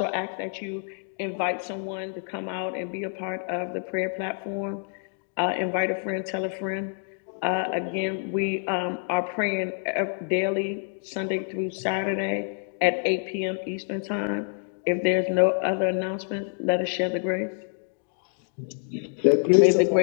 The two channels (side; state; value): right; silent; 57 dB below the other